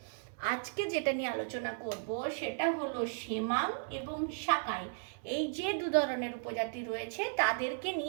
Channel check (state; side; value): silent; left; 54 dB below the other